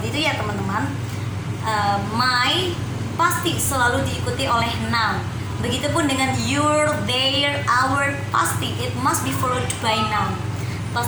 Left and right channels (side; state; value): both; identical; correlation 1.00